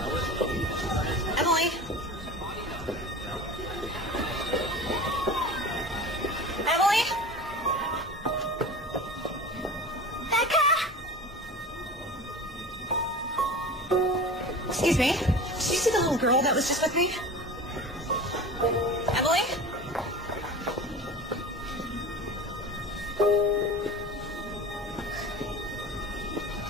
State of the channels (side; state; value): both; normal; correlation 0.35